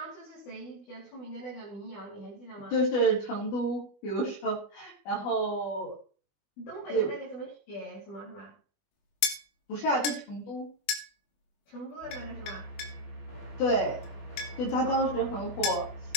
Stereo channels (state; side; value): late; right; 21 ms